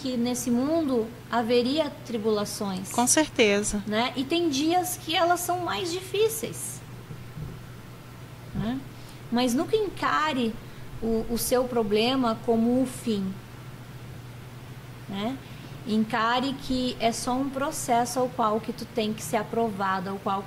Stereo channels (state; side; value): identical; both; correlation 1.00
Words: nesse mundo haveria tribulações. Com certeza. Né? E tem dias que elas são mais difíceis. Né? Mas nunca encare o seu problema como o fim. Né? Encare que é só um processo ao qual que tu tem que ser aprovado, ao qual